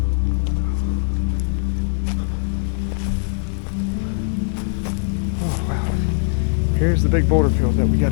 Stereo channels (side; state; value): right; silent; digital silence